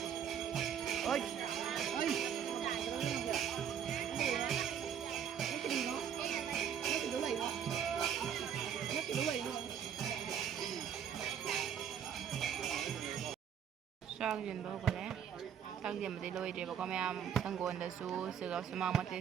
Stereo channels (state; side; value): quieter; left; 8.6 dB